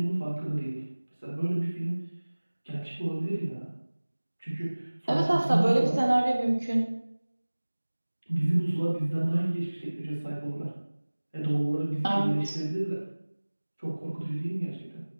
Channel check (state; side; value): inverted; both; correlation -1.00